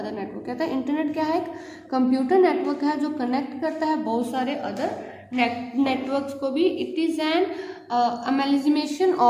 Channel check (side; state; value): both; identical; correlation 1.00